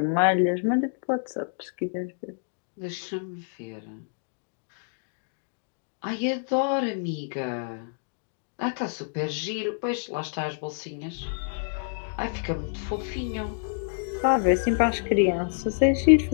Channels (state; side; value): silent; right; digital silence